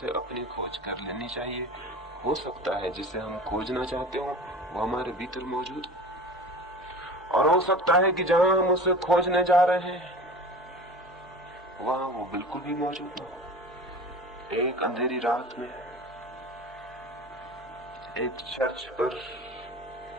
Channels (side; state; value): both; normal; correlation 0.36